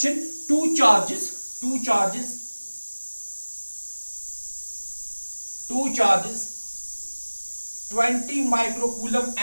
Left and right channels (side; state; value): both; inverted; correlation -1.00